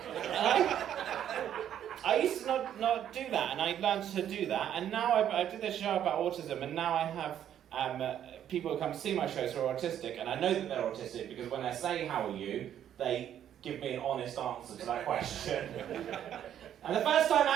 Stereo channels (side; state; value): left; quieter; 10.2 dB